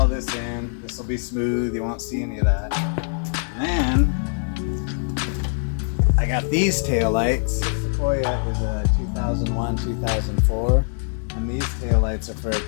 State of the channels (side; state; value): right; silent; 63 dB below the other